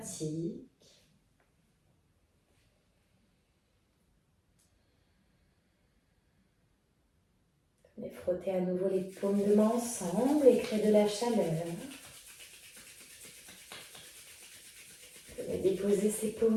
Venez frotter à nouveau les paumes de main ensemble et créer de la chaleur. Venez déposer ces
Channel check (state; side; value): identical; both; correlation 1.00